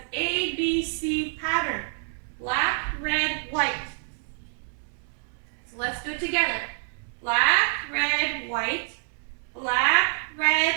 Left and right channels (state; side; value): silent; left; 60 dB below the other